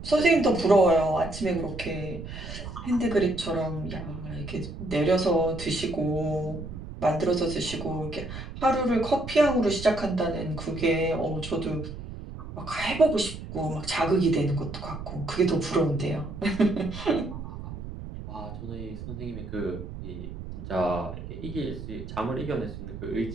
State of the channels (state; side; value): noise; right; rumble, 10 dB below the sound